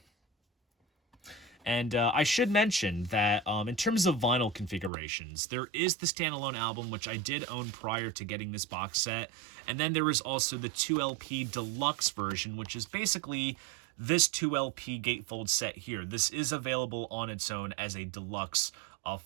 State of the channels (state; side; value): drops out; left; at 4.9 s